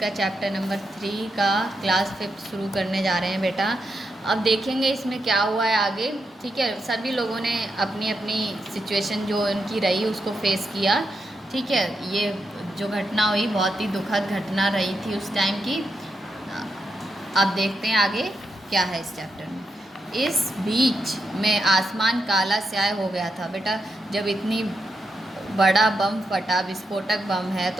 का चैप्टर नंबर 3 का क्लास 5 शुरू करने जा रहे हैं बेटा। अब देखेंगे इसमें क्या हुआ है आगे। ठीक है, सभी लोगों ने अपनी अपनी सिचुएशन जो उनकी रही उसको फेस किया। ठीक है, ये जो घटना हुई बहुत ही दुखद घटना रही थी उस टाइम की। अब देखते हैं आगे क्या है इस चैप्टर में। इस बीच में आसमान काला स्याह हो गया था बेटा। जब इतनी बड़ा बम फटा, विस्फोटक बम है,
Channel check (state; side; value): normal; both; correlation 0.84